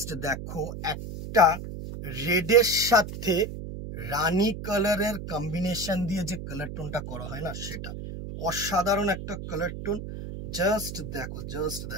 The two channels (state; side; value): noise; right; hum, 8 dB below the sound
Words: দেখো, একটা রেডের সাথে রানী কালারের কম্বিনেশন দিয়ে যে কালার টোনটা করা হয় না, সেটা অসাধারণ একটা কালার টোন। জাস্ট দেখো, জাস্ট